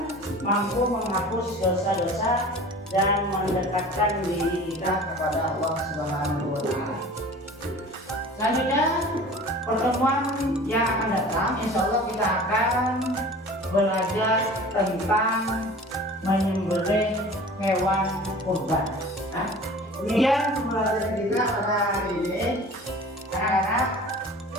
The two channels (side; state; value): both; normal; correlation 0.42